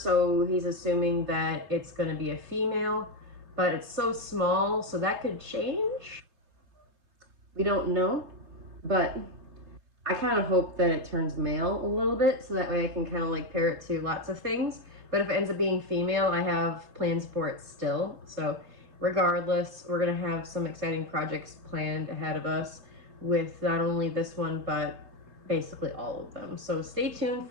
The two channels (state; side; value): late; left; 3.3 ms